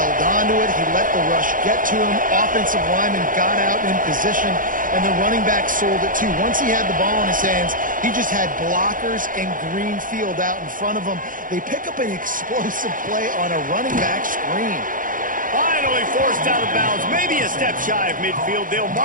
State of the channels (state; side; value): late; left; 0.39 ms